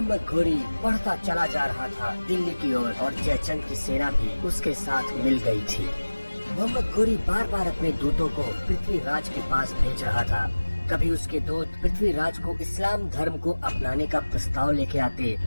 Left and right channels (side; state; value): both; inverted; correlation -1.00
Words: घोरी बढ़ता चला जा रहा था दिल्ली की ओर और जयचंद की सेना भी उसके साथ मिल गई थी। मोहम्मद घोरी बार बार अपने दूतों को पृथ्वीराज के पास भेज रहा था। कभी उसके दूत पृथ्वीराज को इस्लाम धर्म को अपनाने का प्रस्ताव लेके आते,